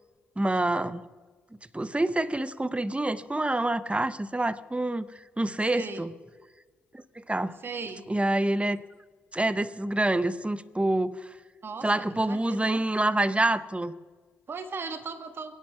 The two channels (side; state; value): both; normal; correlation 0.91